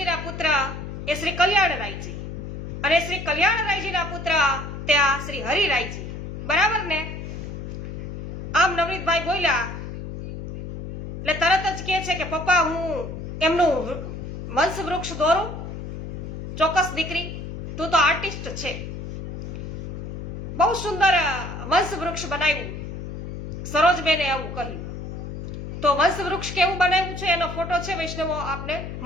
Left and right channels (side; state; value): left; noise; hum, 8 dB below the sound